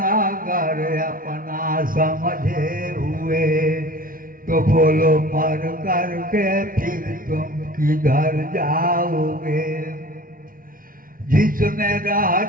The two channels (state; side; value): late; left; 0.41 ms